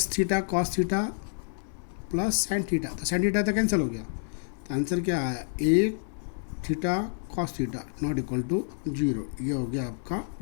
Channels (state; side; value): silent; right; 59 dB below the other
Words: theta cos theta plus sine theta. तो साइन थीटा तो कैंसिल हो गया. तो आंसर क्या आया a theta cos theta not equal to 0। ये हो गया आपका